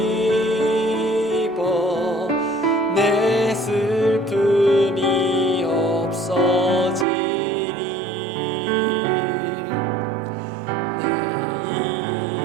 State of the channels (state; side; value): drops out; left; at 7.1 s